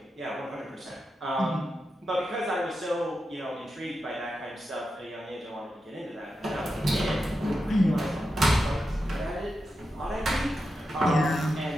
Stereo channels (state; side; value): normal; both; correlation 0.89